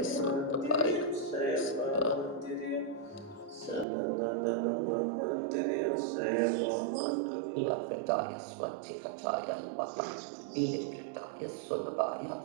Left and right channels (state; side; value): drops out; left; at 3.9 s